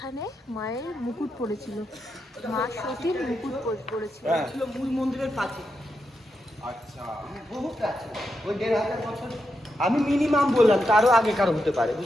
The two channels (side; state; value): both; normal; correlation 0.85